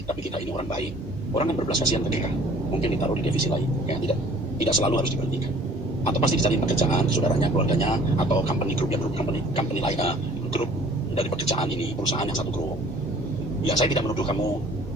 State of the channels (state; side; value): normal; both; correlation 0.52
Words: tapi kita ini orang baik, orang kan berbelas kasihan ke kita. Mungkin ditaruh di divisi lain, ya tidak selalu harus diberhentikan. Atau pasti dicari pekerjaan, saudaranya, keluarganya, atau company group company lain, grup dari pekerjaan ini, perusahaan yang satu grup. Ya saya tidak menuduh kamu